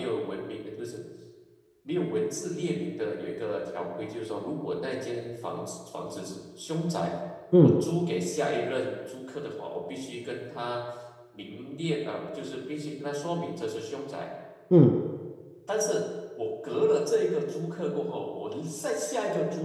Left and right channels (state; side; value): identical; both; correlation 1.00